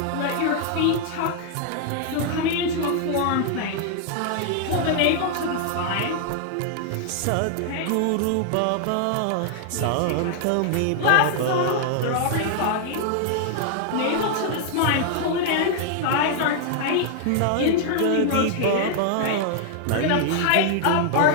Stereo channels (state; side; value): different; both; correlation 0.00